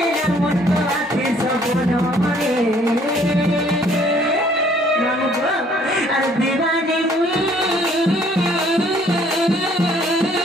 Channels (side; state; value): both; normal; correlation 0.61